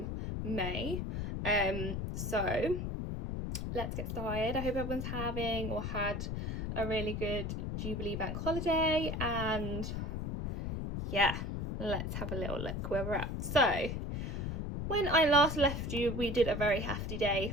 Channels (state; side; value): noise; left; rumble, 3 dB below the sound